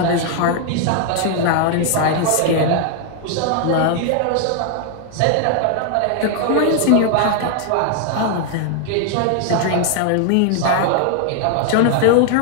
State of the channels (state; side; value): different; both; correlation 0.00